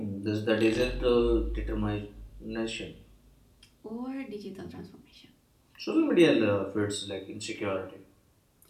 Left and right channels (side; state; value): both; identical; correlation 1.00